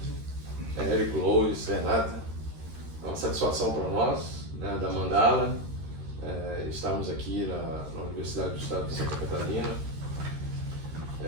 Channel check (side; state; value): left; late; 13 ms